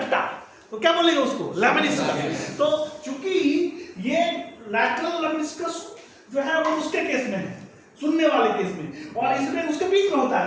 तो क्या बोलेंगे उसको, लेमनिस्कस। तो चूंकि ये लैटरल लेमनिस्कस जो है वो उसके केस में है, सुनने वाले केस में, और इसमें उसके बीच में होता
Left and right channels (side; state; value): both; identical; correlation 1.00